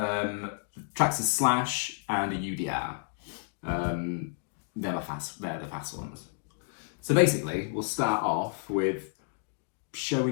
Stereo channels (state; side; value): silent; right; digital silence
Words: Slash and a UDR. They're the fast ones. So basically, we'll start off with